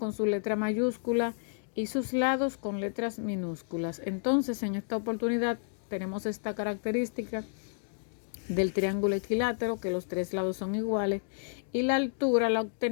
su letra mayúscula y sus lados con letras minúsculas. Entonces, en esta oportunidad tenemos esta característica del triángulo equilátero, que los tres lados son iguales, y la altura la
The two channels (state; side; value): silent; right; digital silence